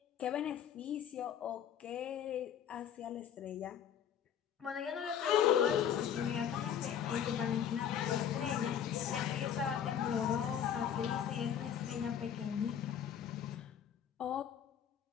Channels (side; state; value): right; quieter; 8.9 dB